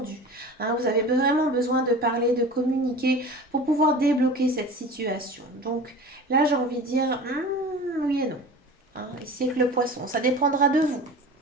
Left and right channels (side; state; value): both; normal; correlation 0.36